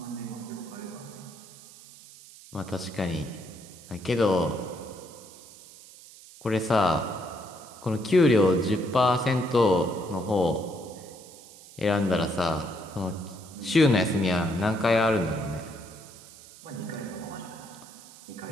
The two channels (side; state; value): right; noise; hiss, 20 dB below the sound